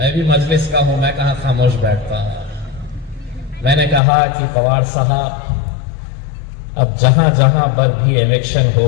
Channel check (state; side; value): drops out; right; at 4.0 s